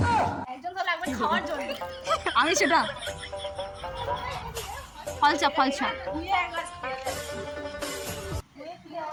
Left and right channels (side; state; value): both; identical; correlation 1.00